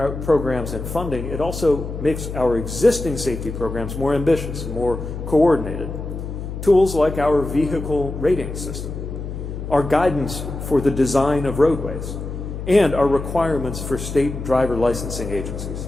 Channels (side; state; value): left; noise; hum, 7 dB below the sound